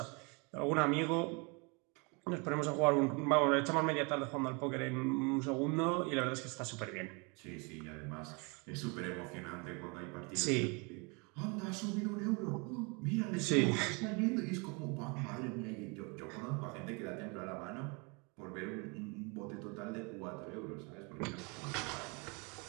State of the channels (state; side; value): quieter; left; 31.0 dB